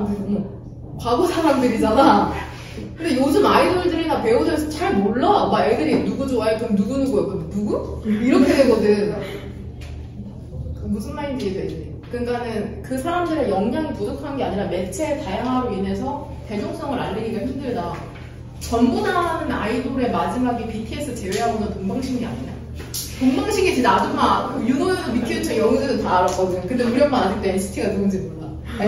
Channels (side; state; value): both; identical; correlation 1.00